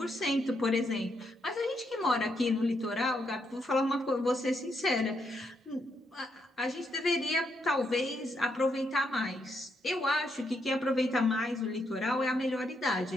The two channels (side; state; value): both; normal; correlation 0.79